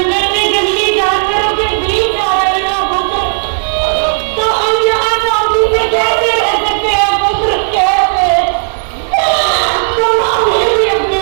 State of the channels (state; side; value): silent; left; digital silence